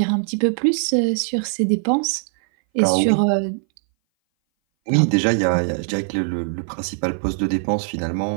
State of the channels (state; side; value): silent; left; 60 dB below the other